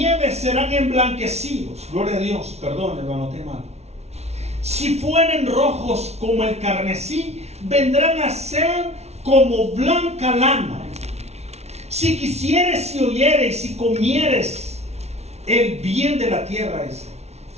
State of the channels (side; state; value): left; late; 0.31 ms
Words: serán emblanquecidos. Gloria a Dios. Perdón, hermano, te mal. Si fueren rojos como el carmesí, vendrán a ser como blanca lana. Si quisieres y oyeres, si comieres el bien de la tierra,